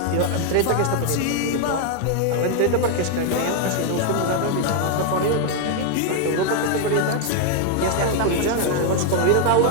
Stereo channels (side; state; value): both; different; correlation 0.00